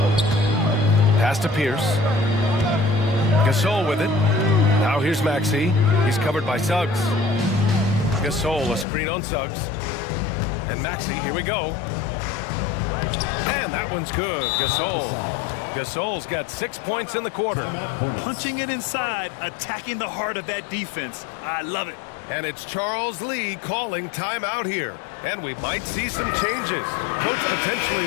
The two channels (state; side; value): drops out; right; at 8.8 s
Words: Pass to Pierce. Gasol with it. Now here's Maxey. He's covered by Suggs. Gasol, a screen on Suggs. And Maxey, here we go. And that one's good. Gasol's got 6 points in the quarter. Punching it inside, attacking the heart of that defense. I love it. And it's Charles Lee calling timeout here. And we might see some changes. Coach potentially